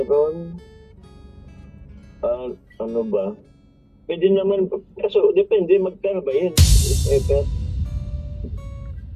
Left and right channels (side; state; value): both; identical; correlation 1.00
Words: ano ba? Pwede naman, kaso depende, magkano ba yan?